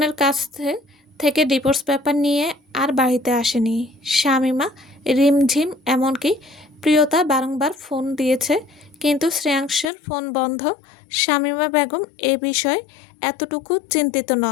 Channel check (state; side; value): drops out; right; at 9.9 s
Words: কাছ থেকে ডিভোর্স পেপার নিয়ে আর বাড়িতে আসেনি শামীমা। রিমঝিম এমনকি প্রিয়তা বারংবার ফোন দিয়েছে, কিন্তু শ্রেয়াংশের ফোন বন্ধ। শামীমা বেগম এ বিষয়ে এতটুকু চিন্তিত